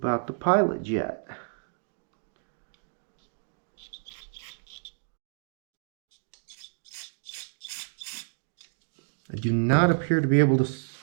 the pilot jet? I do not appear to be able to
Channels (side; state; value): left; silent; digital silence